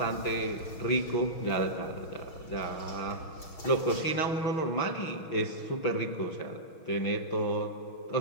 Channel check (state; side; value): late; right; 6.3 ms